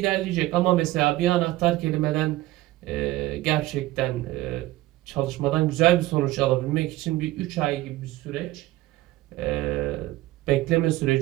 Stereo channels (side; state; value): left; quieter; 17.3 dB